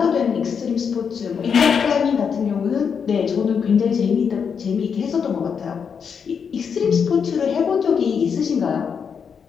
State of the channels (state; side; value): quieter; right; 6.6 dB